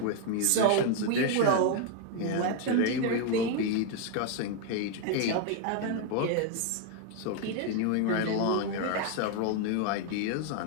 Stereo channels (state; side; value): different; both; correlation 0.00